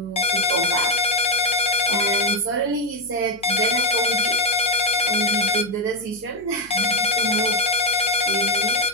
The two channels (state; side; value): noise; left; hum, 26 dB below the sound